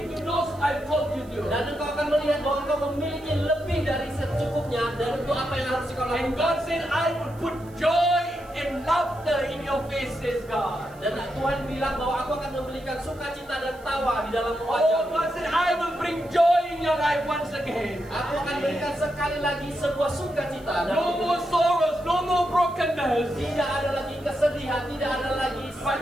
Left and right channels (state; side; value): noise; right; hiss, 27 dB below the sound